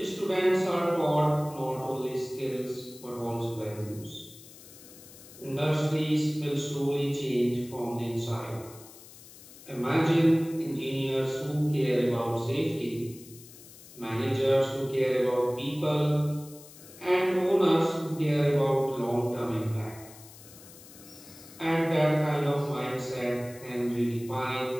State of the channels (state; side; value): noise; left; hiss, 19 dB below the sound